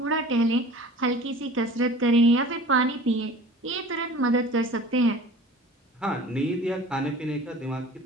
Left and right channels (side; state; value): both; normal; correlation 0.43